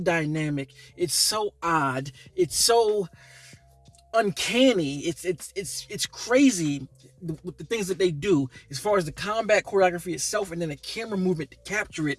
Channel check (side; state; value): both; identical; correlation 1.00